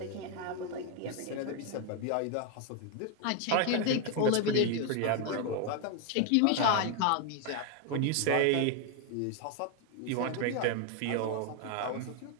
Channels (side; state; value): both; different; correlation 0.01